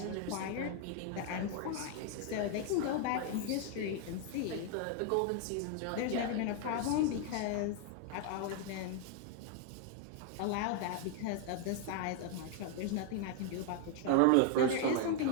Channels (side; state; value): both; different; correlation 0.00